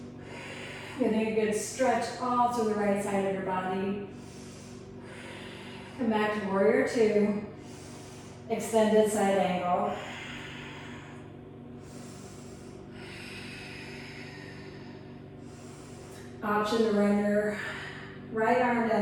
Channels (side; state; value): both; identical; correlation 1.00